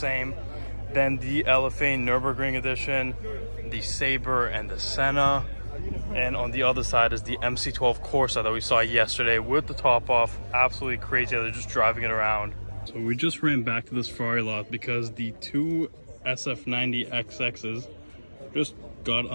Then the LFA Nürburgring edition, the Sabre and the Senna. And on the other side is the MC12 Corsa that we saw yesterday with the top off. Absolutely crazy. They're just driving it around. So we just ran back to this Ferrari lot because the two SF90 XXs just got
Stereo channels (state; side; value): inverted; both; correlation -1.00